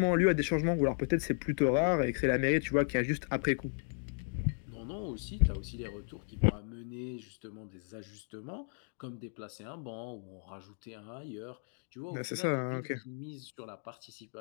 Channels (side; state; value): right; silent; 55 dB below the other